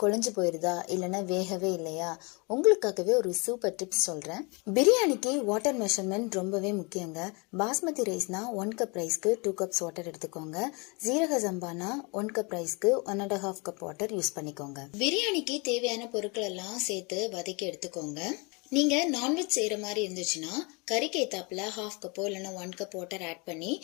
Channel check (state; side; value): quieter; right; 30.1 dB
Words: குழஞ்சு போயிடுதா, இல்லைன்னா வேகவே இல்லையா, உங்களுக்காகவே ஒரு சூப்பர் டிப்ஸ் சொல்கிறேன். பிரியாணிக்கு வாட்டர் மெஷர்மெண்ட் ரொம்பவே முக்கியங்க. பாஸ்மதி ரைஸ்னா 1 கப் ரைஸ்க்கு 2 கப்ஸ் வாட்டர் எடுத்துக்கோங்க. ஜீரக சம்பானா 1 கப் ரைஸ்க்கு 1.5 கப் வாட்டர் யூஸ் பண்ணிக்கோங்க. பிரியாணிக்கு தேவையான பொருட்கள் எல்லாம் சேர்த்து வதக்கி எடுத்துக்கோங்க. நீங்க நான்வெஜ் செய்யற மாதிரி இருந்துச்சுன்னா கறிக்கு ஏத்தாப்புல 1/2 கப்போ இல்லைன்னா 1 கப் வாட்டர் ஆட் பண்ணி